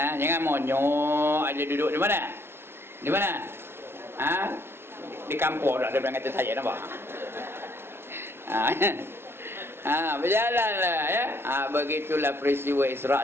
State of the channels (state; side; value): late; left; 0.12 ms